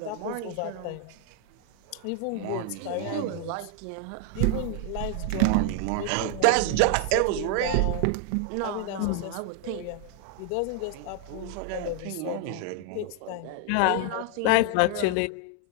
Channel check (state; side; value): different; both; correlation 0.00